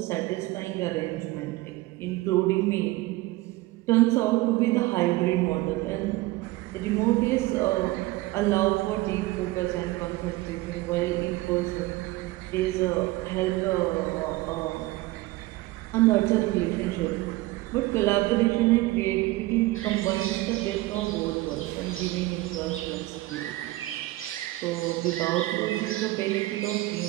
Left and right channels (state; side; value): quieter; left; 19.1 dB